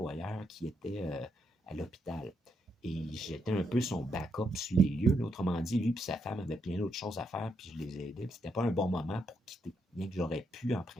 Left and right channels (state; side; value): normal; both; correlation 0.78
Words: qui était à l'hôpital. Et j'étais un peu son backup sur les lieux. Là. Autrement dit, lui et sa femme avaient plein d'autres choses à faire, puis je les ai aidés. C'était pas un bon moment pour quitter. Bien que j'aurais pu en